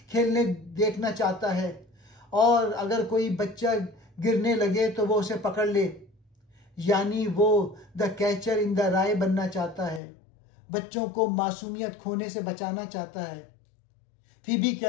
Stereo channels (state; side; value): drops out; right; at 10.0 s